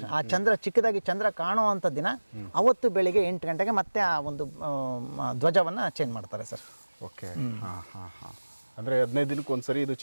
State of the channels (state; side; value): inverted; both; correlation -1.00